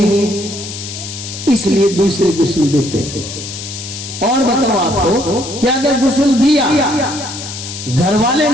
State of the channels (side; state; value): left; noise; hiss, 9 dB below the sound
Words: اس لیے دوسرے غسل دیتے ہیں۔ اور بتاؤ آپ کو کہ اگر غسل دیا، گھر والے